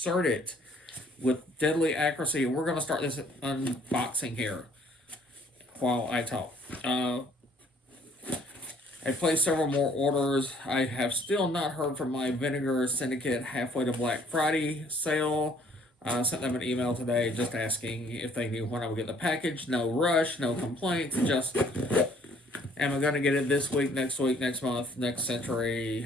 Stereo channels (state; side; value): normal; both; correlation 0.59